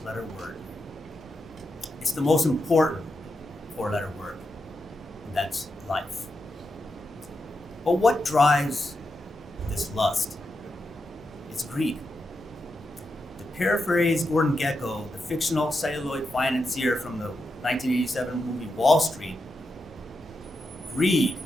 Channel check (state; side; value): normal; both; correlation 0.86